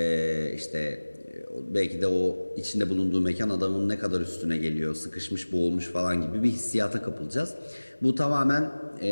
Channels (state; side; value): inverted; both; correlation -1.00